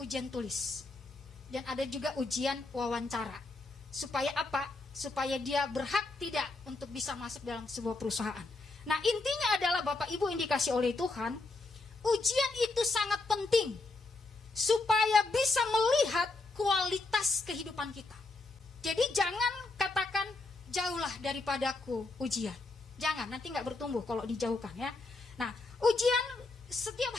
ujian tulis. Dan ada juga ujian wawancara. Supaya apa? Supaya dia berhak tidak untuk bisa masuk dalam sebuah perusahaan. Nah, intinya adalah Bapak Ibu yang dikasih oleh Tuhan, ujian itu sangat penting supaya bisa melihat kualitas kehidupan kita. Jadi jangan katakan jauhlah daripadaku ujian. Jangan, nanti nggak bertumbuh kalau dijauhkan ya. Nah, ujian setiap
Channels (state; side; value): quieter; right; 3.3 dB